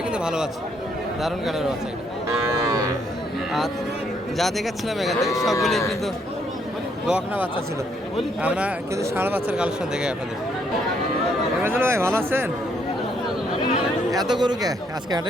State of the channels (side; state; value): both; normal; correlation 0.71